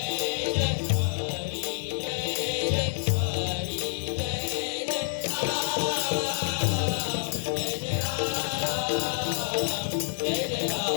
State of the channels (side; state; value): right; silent; digital silence